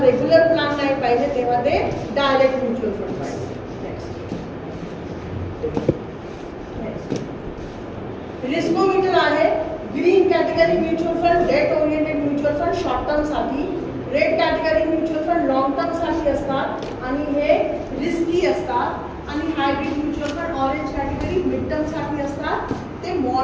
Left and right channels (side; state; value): both; identical; correlation 1.00